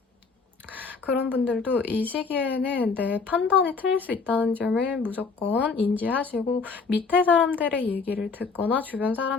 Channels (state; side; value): quieter; right; 4.8 dB